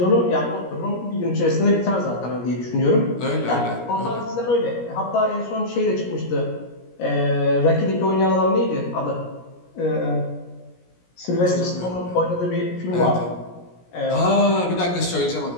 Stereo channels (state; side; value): late; right; 17 ms